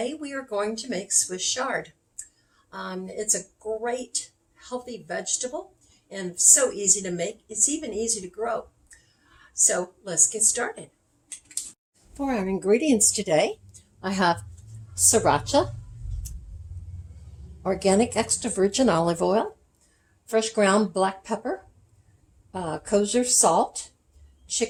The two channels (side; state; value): both; identical; correlation 1.00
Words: we are going to make Swiss chard. It's a great healthy vegetable and so easy to make. It's even easy to grow. So let's get started. For our ingredients today, I have sriracha, organic extra virgin olive oil, fresh ground black pepper, kosher salt,